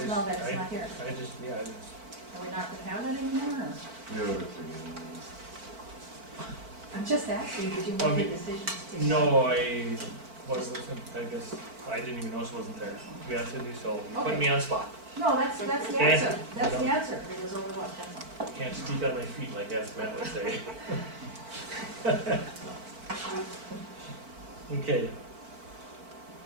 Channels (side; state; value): left; late; 4.5 ms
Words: now that it's not here. I just, Are we not gonna have that anymore? Or? Yeah, but I'm just asking, did you I make mean, the decisions to? no, I guess, I didn't even notice it wasn't there, to be honest with you, so you put me on spot. No, that's the Okay. answer. That's the answer. It was over what, 10 months? Can't speak on my feet like as Matt would say. Okay.